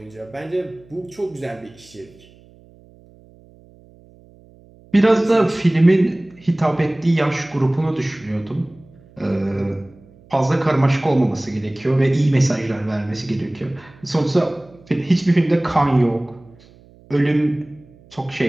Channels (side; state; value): right; noise; hum, 26 dB below the sound